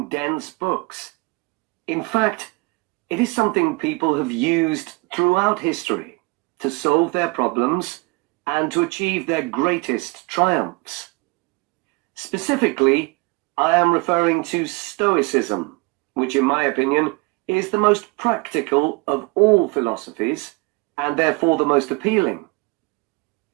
dense books. In fact, it is something people have used throughout history to solve their problems and to achieve their greatest triumphs. Specifically, I am referring to Stoicism, which in my opinion is the most practical of all philosophies and therefore the most appealing.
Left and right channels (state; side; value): quieter; left; 26.4 dB